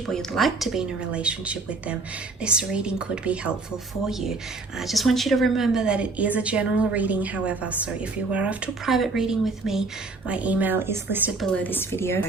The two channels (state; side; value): quieter; left; 3.7 dB